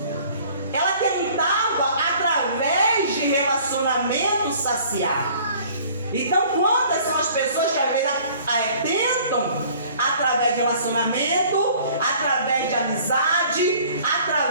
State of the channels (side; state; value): both; inverted; correlation -0.52